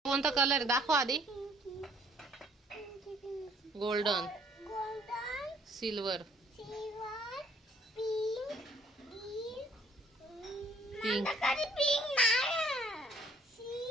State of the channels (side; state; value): both; normal; correlation 0.61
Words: कोणता कलर दाखव आधी. Golden, silver, pink.